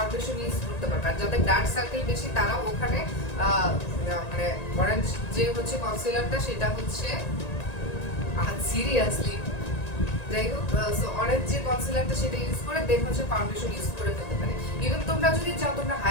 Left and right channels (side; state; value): right; late; 1.9 ms